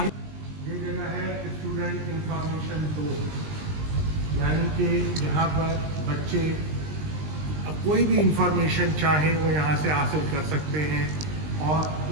ये जगह है स्टूडेंट इंफॉर्मेशन डोर, यानी कि यहाँ पर बच्चे अब कोई भी इंफॉर्मेशन चाहें वो यहाँ से हासिल कर सकते हैं,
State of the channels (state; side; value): late; left; 20 ms